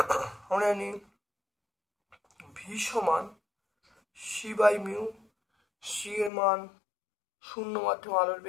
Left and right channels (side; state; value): right; drops out; at 6.3 s